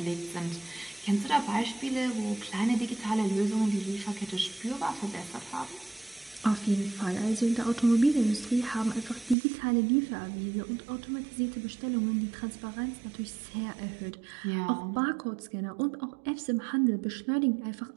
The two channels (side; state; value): left; drops out; at 9.3 s